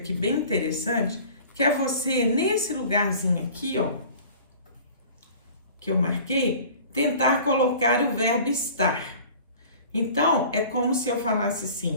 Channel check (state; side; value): inverted; both; correlation -0.45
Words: bem interessante, que é você, nesse lugarzinho aqui, ó, que eu marquei, tentar colocar o verbo estar. Então, é como se eu falasse